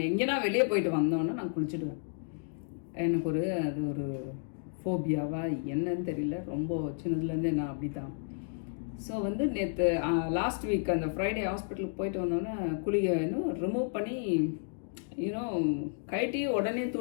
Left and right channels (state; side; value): silent; right; digital silence